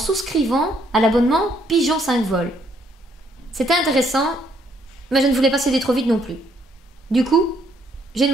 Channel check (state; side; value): normal; both; correlation 0.69